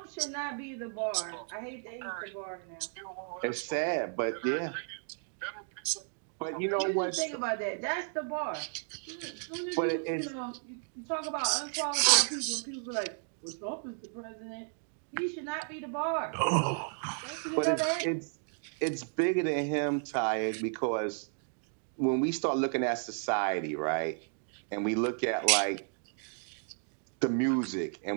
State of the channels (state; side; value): silent; left; 55 dB below the other